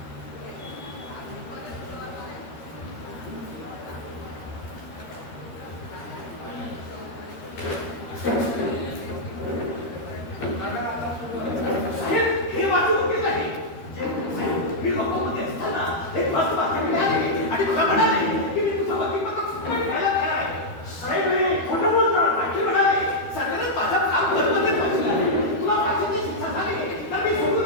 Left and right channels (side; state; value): right; late; 13 ms